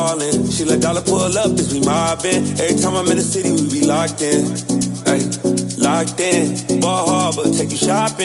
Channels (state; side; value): identical; both; correlation 1.00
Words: She let dollar pull up as we mobbin'. Every time I'm in the city, we be locked in. Ay, locked in. Ball Harbor, take you